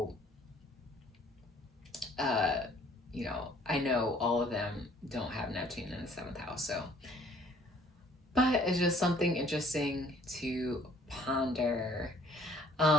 I know all of them don't have Neptune in the seventh house. So, but it's just something interesting to ponder.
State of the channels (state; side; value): normal; both; correlation 0.58